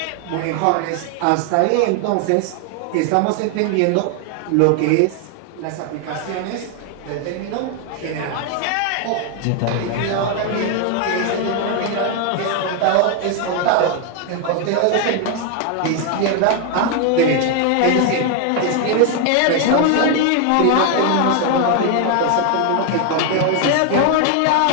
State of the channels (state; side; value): different; both; correlation 0.01